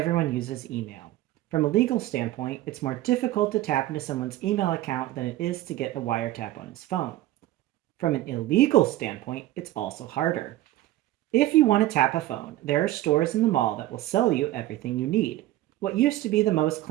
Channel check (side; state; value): left; quieter; 15.4 dB